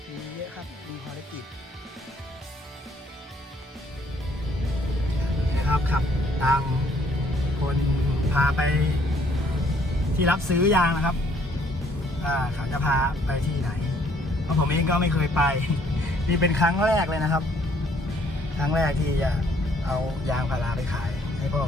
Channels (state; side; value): normal; both; correlation 0.63